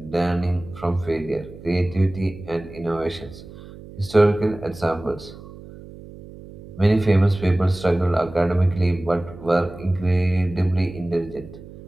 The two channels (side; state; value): right; noise; hum, 17 dB below the sound